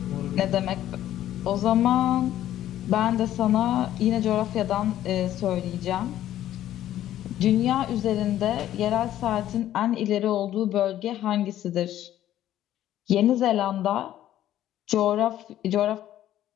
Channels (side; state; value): right; quieter; 12.5 dB